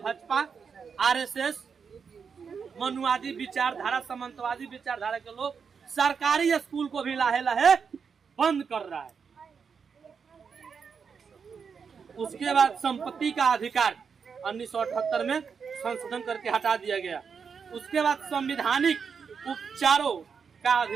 आरएसएस, मनुवादी विचारधारा, सामंतवादी विचारधारा के लोग सरकारी स्कूल को भी लाहे लाहे बंद कर रहा है। उसके बाद संपत्ति का अधिकार 1978 में संशोधन करके हटा दिया गया। उसके बाद संवैधानिक उपचारों का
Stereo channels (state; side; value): quieter; left; 6.1 dB